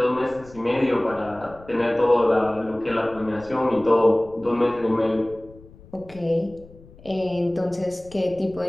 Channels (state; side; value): noise; left; rumble, 22 dB below the sound